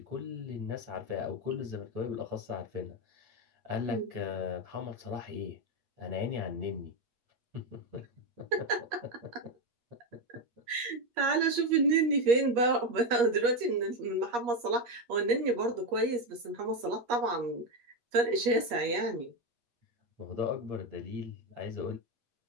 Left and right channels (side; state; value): left; late; 8.4 ms